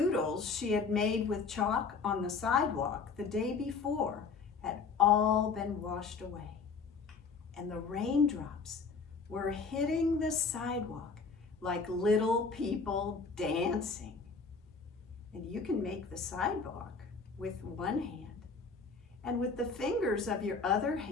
she had made with chalk on the sidewalk the day before had all been washed away. And the raindrops were hitting the sidewalk like little people dancing. And you can make the sidewalk with one hand. And with the fingers of your other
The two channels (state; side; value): quieter; right; 4.9 dB